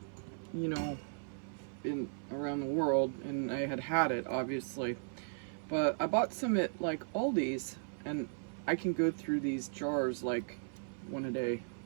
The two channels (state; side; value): silent; left; 53 dB below the other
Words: around the world, and I had it, obviously. But I bought some at like Aldi's, and I can go through these jars like one a day.